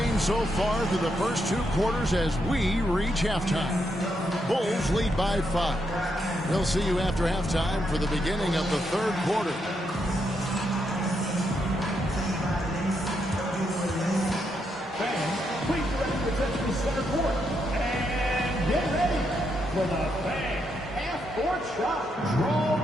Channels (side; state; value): both; normal; correlation 0.80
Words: so far through the first 2 quarters as we reach halftime. Bulls lead by 5. We'll see you after halftime for the beginning of the 3rd quarter. Fans, please direct your attention to center court. And get ready for the Fan half-court shot.